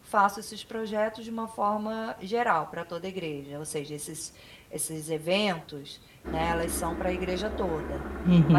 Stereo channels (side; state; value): both; identical; correlation 1.00